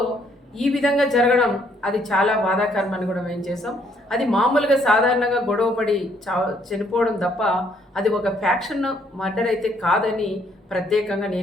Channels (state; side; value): normal; both; correlation 0.68